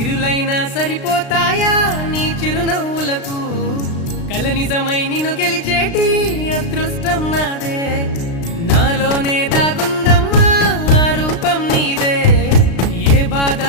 సరిపోతాయా నీ చిరునవ్వులకు కల నిజమై నిన్ను గెలిచేటి అదృష్టం నాదే నాలోనే దాగుందమ్మా ఆ రూపం నీదే ఏ బాధ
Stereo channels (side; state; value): right; late; 36 ms